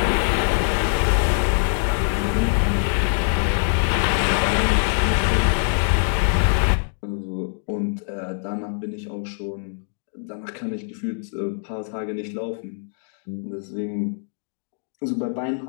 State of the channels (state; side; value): silent; right; digital silence